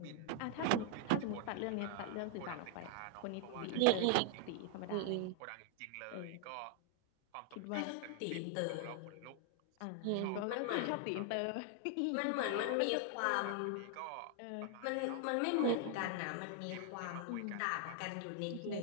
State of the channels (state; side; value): different; both; correlation 0.00